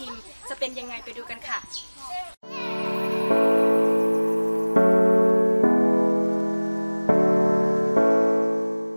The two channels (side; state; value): both; inverted; correlation -1.00